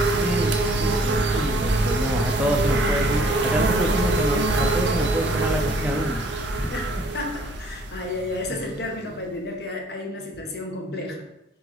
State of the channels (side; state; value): both; normal; correlation 0.58